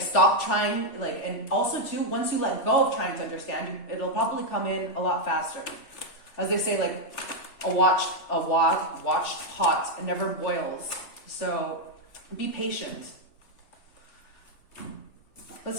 stop trying, like, and also too, once you let go of trying to understand, it'll probably come in a lot faster. As they say, like, a watched pot never boils. So be patient.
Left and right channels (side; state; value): right; late; 3.4 ms